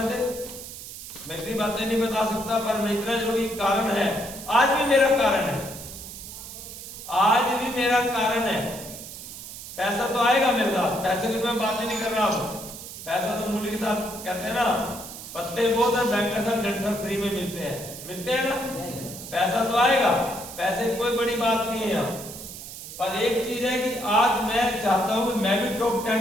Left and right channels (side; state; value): right; noise; hiss, 12 dB below the sound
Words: थे, मैं इतनी बातें नहीं बता सकता, पर मैं इतना जरूर कारण है, आज भी मेरा कारण है, आज भी मेरा कारण है। पैसा तो आएगा मेरे साथ, पैसे की मैं बात ही नहीं कर रहा हूं, पैसा तो मूल्य के साथ कहते हैं ना, पत्ते बहुत है, बैंक के साथ डंठल फ्री में मिलते हैं ना, पैसा तो आएगा, पैसे की कोई बड़ी बात नहीं है यहाँ। पर एक चीज है कि आज मैं चाहता हूं कि मैं भी टॉप